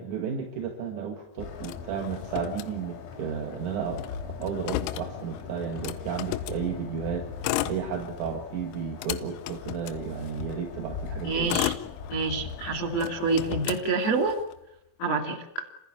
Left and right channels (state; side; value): late; right; 24 ms